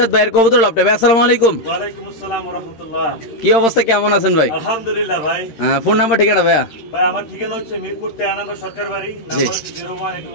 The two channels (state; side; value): late; right; 13 ms